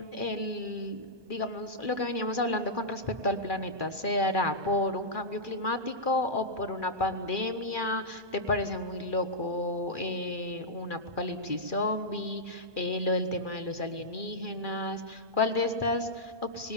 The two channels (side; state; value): left; late; 1.2 ms